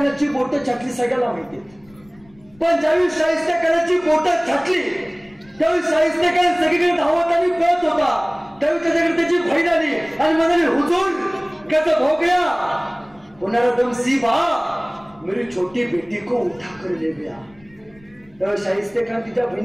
बोट छाटली सगळ्याला माहिती, पण ज्यावेळी शाहिस्तेखानाची बोट छाटली त्यावेळी शाहिस्तेखान सगळीकडे धावत आणि पळत होता. त्यावेळी त्याच्याकडे त्याची बहीण आली आणि म्हणाली, हुजूर कैसा हो गया. होणारा दम सी बा मेरी छोटी बेटी को उठा कर ले गया. त्यावेळी शाहिस्तेखान तिच्या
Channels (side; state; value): left; noise; rumble, 28 dB below the sound